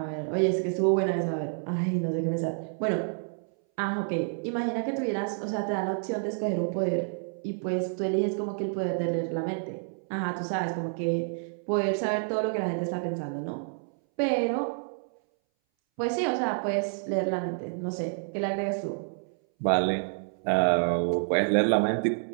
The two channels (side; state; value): left; silent; 59 dB below the other